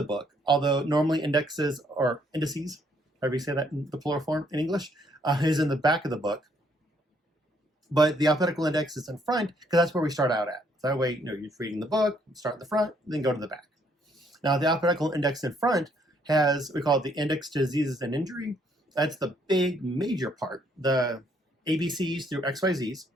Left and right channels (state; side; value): normal; both; correlation 0.68